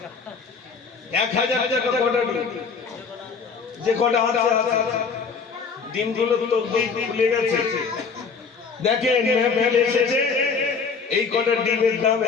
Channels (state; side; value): quieter; right; 5.3 dB